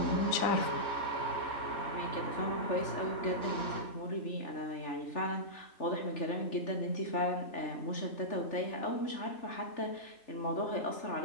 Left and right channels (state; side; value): late; right; 3.4 ms